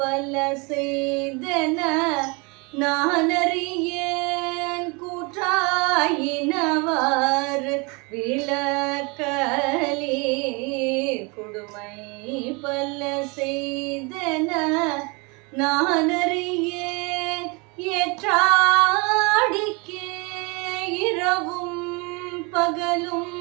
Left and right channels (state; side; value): quieter; left; 29.5 dB